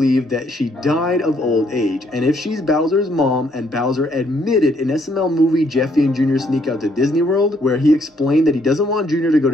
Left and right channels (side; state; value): both; normal; correlation 0.69